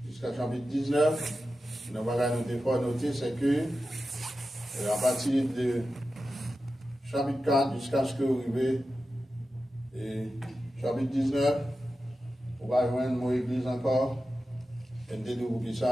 jusqu'à chapitre 19. Nous devons noter, c'est que à partir de chapitre 4 jusqu'à ce que vous arrivez, et chapitre 19, on va joindre mon église encore, et nous devons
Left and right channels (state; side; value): normal; both; correlation 0.92